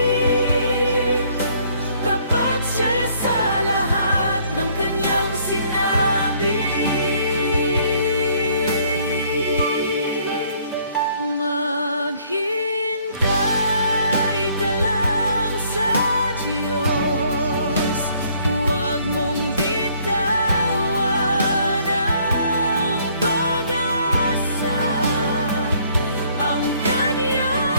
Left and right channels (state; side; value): inverted; both; correlation -0.62